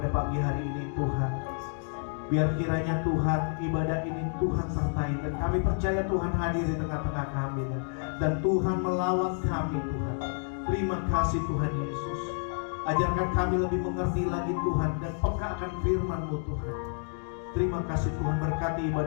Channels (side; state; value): right; silent; 58 dB below the other